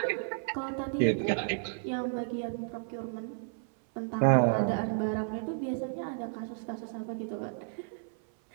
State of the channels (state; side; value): silent; left; 56 dB below the other